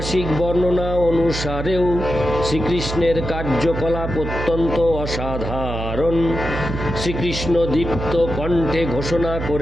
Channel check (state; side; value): noise; right; hum, 5 dB below the sound